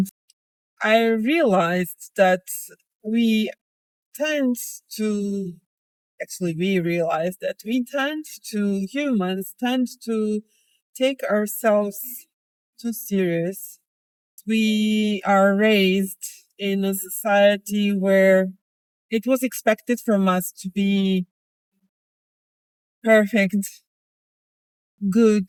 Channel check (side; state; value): both; identical; correlation 1.00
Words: I realized that we tend to we realize that humans tend to take ourselves too serious. We are raised in a society where it was expected from us to be perfect, good,